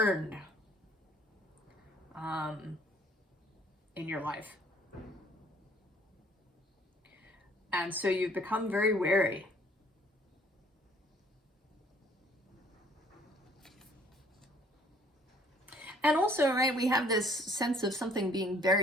in your life. And so you've become very wary. And also, right, we have this sense of something being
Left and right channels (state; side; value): normal; both; correlation 0.59